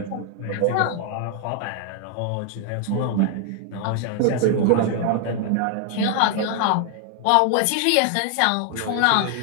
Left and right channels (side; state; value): both; different; correlation 0.00